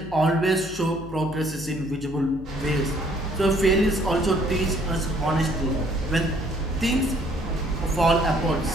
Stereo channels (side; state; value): left; noise; hum, 15 dB below the sound